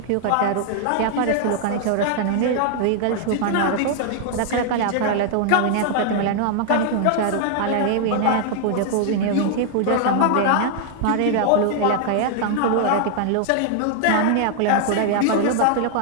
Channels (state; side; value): different; both; correlation 0.00